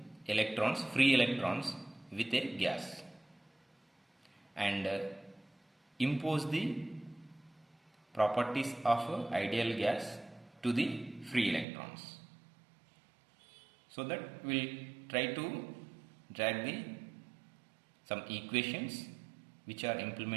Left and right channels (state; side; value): drops out; left; at 11.7 s